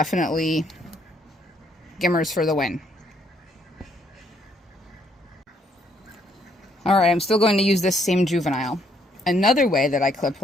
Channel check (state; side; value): normal; both; correlation 0.69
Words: Gimars for the win. Alright, I'm still going to use this same juvenile. Another way that I clip